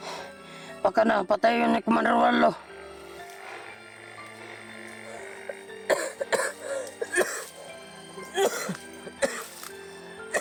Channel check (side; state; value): both; identical; correlation 1.00